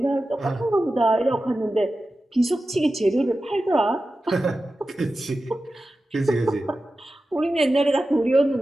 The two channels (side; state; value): both; normal; correlation 0.93